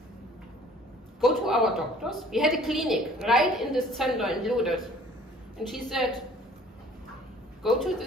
go to our doctors. We had a clinic right in this center in Ludwig. And she said, go to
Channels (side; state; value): both; normal; correlation 0.53